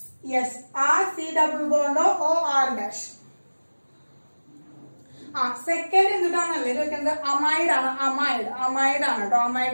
yes, RC≡OR'. സെക്കൻഡ് എന്തിട്ടാണല്ലേ ചോദിക്കുന്നത്, അമൈഡ് ആണ് കേട്ടോ, അമൈഡ്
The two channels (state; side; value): inverted; both; correlation -1.00